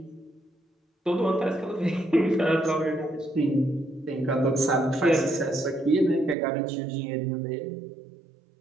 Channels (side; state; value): left; drops out; at 6.4 s